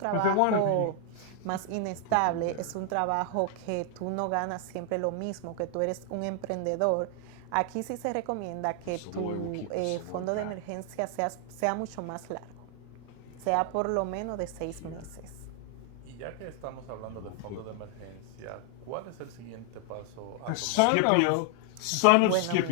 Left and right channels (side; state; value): both; different; correlation 0.00